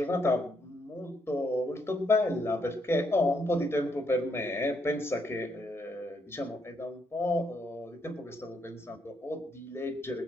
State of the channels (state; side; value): normal; both; correlation 0.75